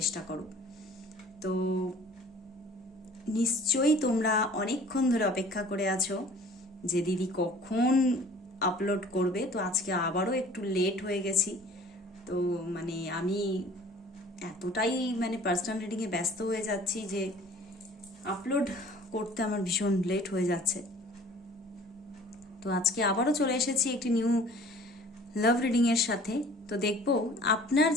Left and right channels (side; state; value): both; normal; correlation 0.49